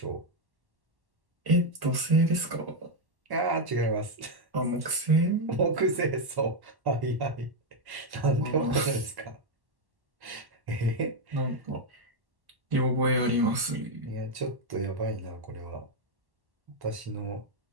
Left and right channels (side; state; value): left; late; 1.1 ms